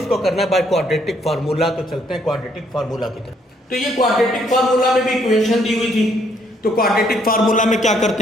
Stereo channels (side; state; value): both; normal; correlation 0.69